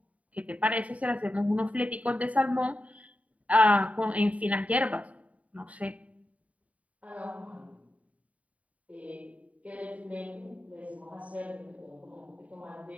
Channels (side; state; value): left; late; 0.068 ms